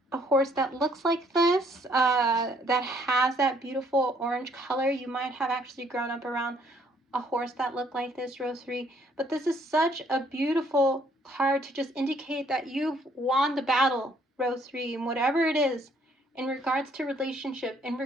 a horse that looks like this, that has that beautiful orange color. You might have actually grown up around a horse that looked like this, row 3. But this is such a beautiful card to just indicate that you've won the battle, row 3, and whatever it is in regards to relationship, in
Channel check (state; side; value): normal; both; correlation 0.65